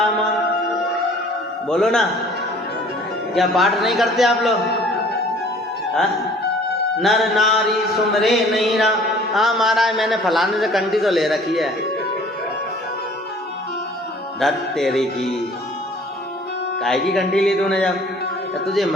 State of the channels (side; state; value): both; normal; correlation 0.52